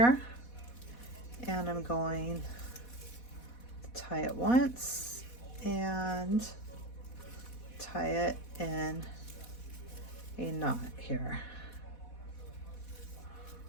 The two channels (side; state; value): right; late; 4.1 ms